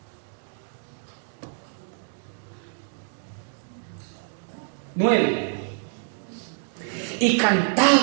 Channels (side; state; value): left; silent; digital silence